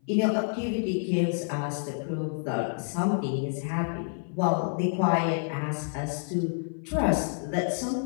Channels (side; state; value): right; silent; 57 dB below the other